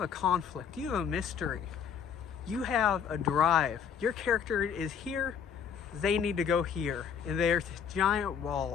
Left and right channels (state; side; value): quieter; right; 7.4 dB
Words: a conflict, you have a mystery, you have a drive. Your character is here, they need to go here, and there's this giant